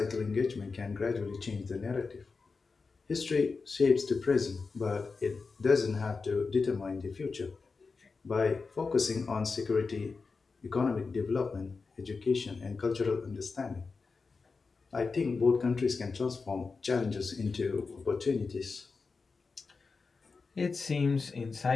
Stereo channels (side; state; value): right; quieter; 4.5 dB